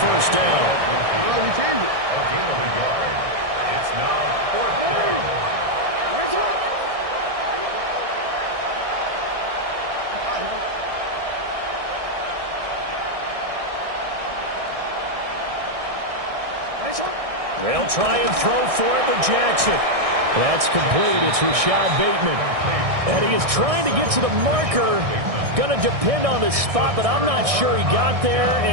down. It's now 4th down. They'll try and throw for it with Jackson. That's complete. It's Rashad Bateman. And he is trying to get to the marker. Going to depend on the spot, but I'm not sure he got there,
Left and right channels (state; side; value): late; left; 1.6 ms